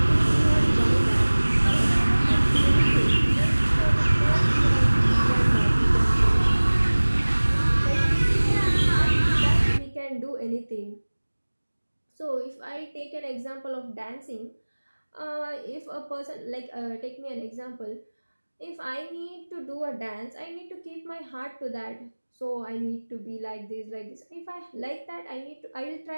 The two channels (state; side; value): inverted; both; correlation -1.00